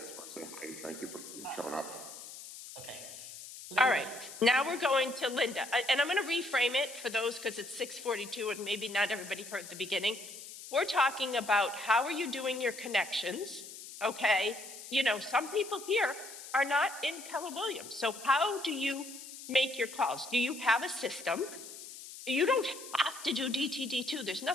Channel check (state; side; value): noise; left; hiss, 13 dB below the sound